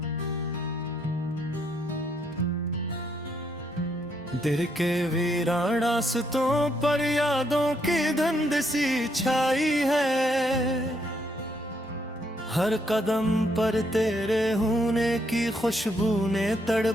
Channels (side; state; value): both; normal; correlation 0.74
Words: दिल के वीरान रास्तों पर यादों की धुंध सी छाई है, हर कदम पर तेरे होने की खुशबू ने